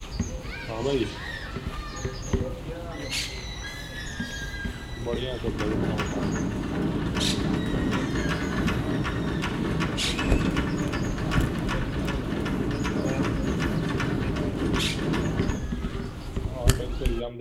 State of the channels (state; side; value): identical; both; correlation 1.00